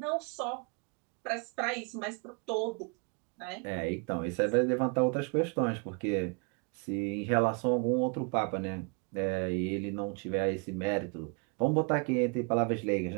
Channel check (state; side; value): quieter; left; 34.6 dB